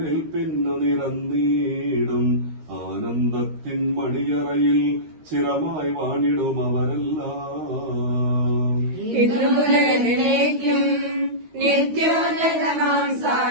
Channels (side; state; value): left; late; 13 ms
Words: നിരന്നീടും. ആനന്ദത്തിൻ മണിയറയിൽ ചിരമായി വാണിടും അവരെല്ലാം. ഇതുമുതലേക്കും നിത്യോന്നതമാം